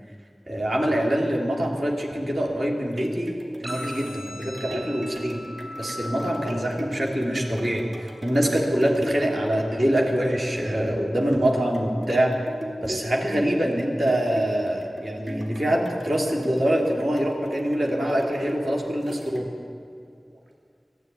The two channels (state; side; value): normal; both; correlation 0.95